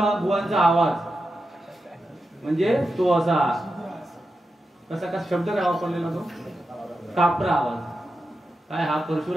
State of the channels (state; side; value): normal; both; correlation 0.89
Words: आवाज म्हणजे तो असा कसा शब्द काय वापरलेला तो कापरा आवाज. काय हा